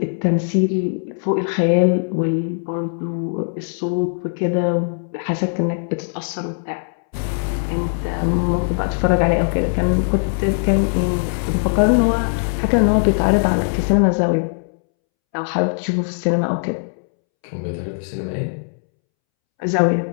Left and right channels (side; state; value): right; silent; 66 dB below the other